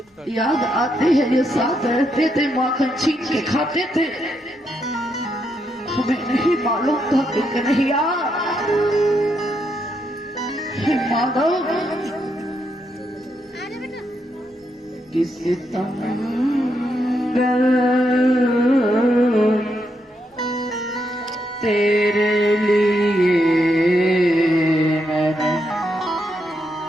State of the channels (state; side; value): normal; both; correlation 0.80